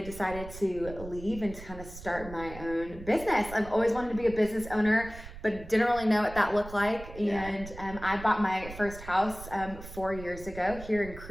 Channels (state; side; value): noise; right; rumble, 14 dB below the sound